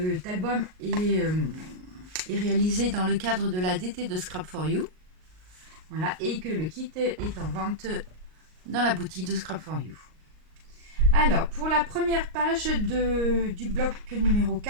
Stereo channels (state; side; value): late; left; 38 ms